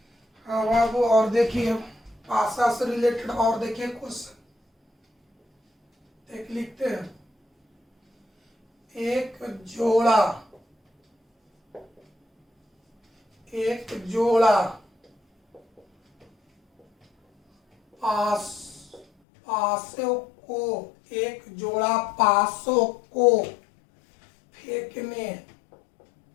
हाँ बाबू, और देखिए पासा से रिलेटेड और देखिए क्वेश्चन एक लिखते हैं, एक जोड़ा पासों को, एक जोड़ा पासों को फेंकने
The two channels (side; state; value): right; drops out; at 19.1 s